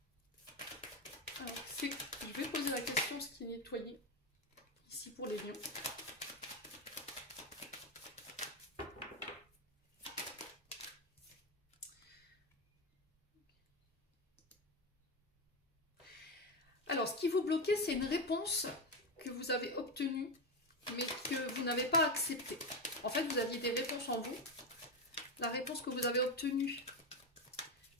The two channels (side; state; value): both; normal; correlation 0.13